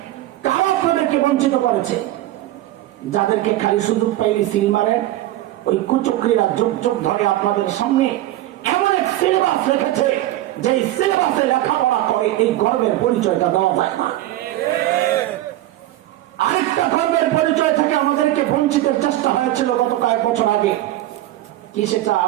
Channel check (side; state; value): left; quieter; 15.0 dB